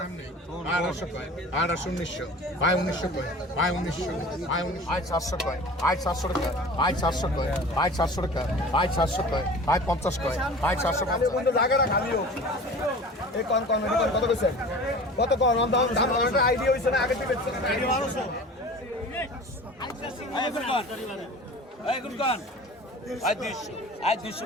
আঠারোশো উনিশশো আয় উনিশশো কয় আয় উনিশশো আয় উনিশ আয় চারশো কয় আয় চারশো টাকা আয় চারশো কয় আয় চারশো টাকা আয় চারশো কয় আয় 50 কয় আয় 450 জায়গাটা খালি হোক এই কোন কত কইছে কত কোন দাম একটা আইডিয়া হইছে না আগে থেকে আইডিয়া 1200 আয় কোন আয় কোন আয় 200 আয় 200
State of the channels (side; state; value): both; normal; correlation 0.40